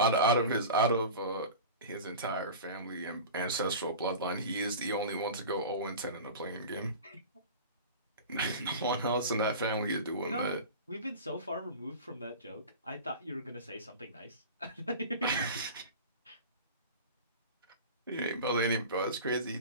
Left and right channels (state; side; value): inverted; both; correlation -0.33